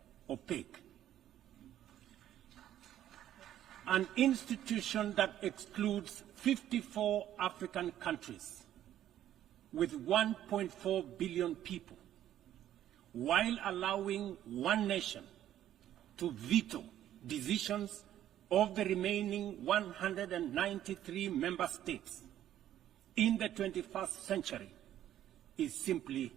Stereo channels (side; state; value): left; quieter; 11.8 dB